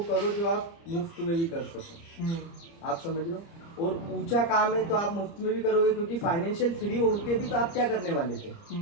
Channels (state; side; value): late; right; 30 ms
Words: करो जो आप मुफ्त में भी कर सको। आप समझ लो। और ऊंचा काम है तो आप मुफ्त में भी करोगे, क्योंकि फाइनेंशियल फ्री होके भी तो आप क्या करने वाले थे,